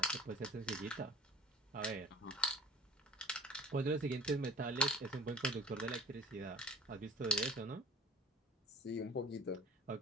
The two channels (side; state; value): both; normal; correlation 0.42